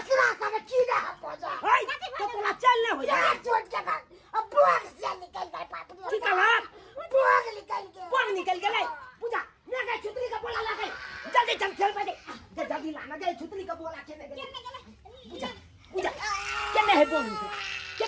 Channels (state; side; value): identical; both; correlation 1.00